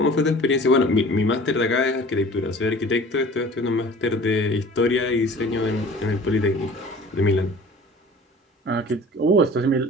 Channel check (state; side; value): normal; both; correlation 0.45